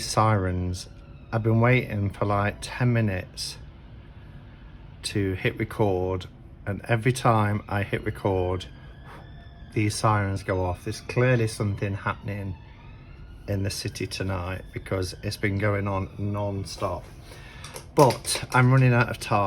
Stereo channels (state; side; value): identical; both; correlation 1.00